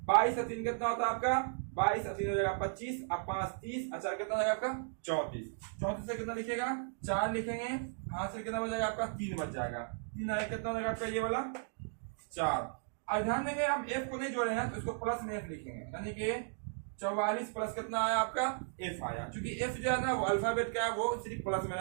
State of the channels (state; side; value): silent; left; digital silence